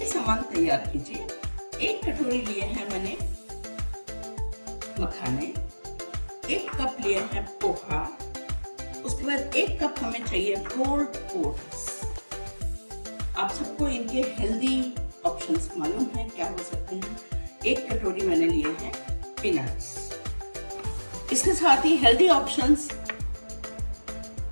सामान तैयार कीजिए। 1 कटोरी लिए हैं मैंने मखाने, 1 कप लिए हैं पोहा, उसके बाद 1 कप हमें चाहिए रोल्ड ओट्स। आप सबको इनके हेल्दी ऑप्शंस मालूम है क्या हो सकते हैं। 1 कटोरी मैंने लिए हैं पीनट्स। इसके साथ ही healthy options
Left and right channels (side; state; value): both; inverted; correlation -1.00